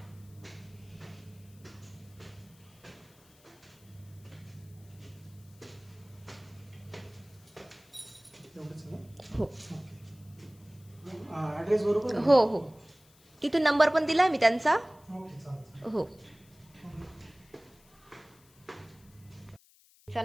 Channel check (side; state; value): left; noise; hiss, 28 dB below the sound